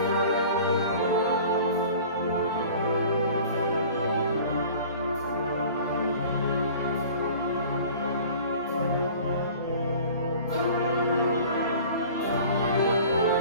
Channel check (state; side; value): inverted; both; correlation -0.44